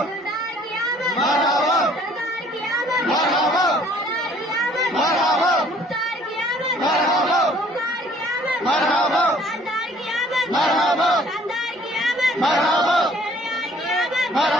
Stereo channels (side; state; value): both; normal; correlation 0.57